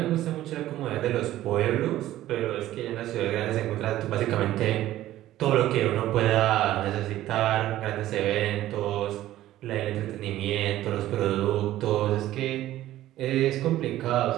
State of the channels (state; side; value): quieter; left; 14.3 dB